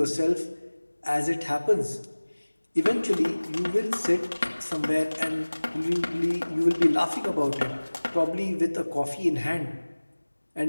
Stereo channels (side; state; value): both; inverted; correlation -1.00